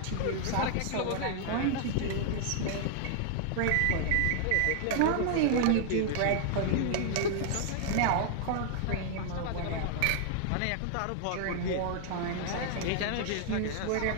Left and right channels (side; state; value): both; different; correlation 0.00